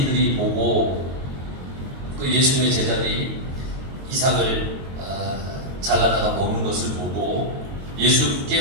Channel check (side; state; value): left; late; 22 ms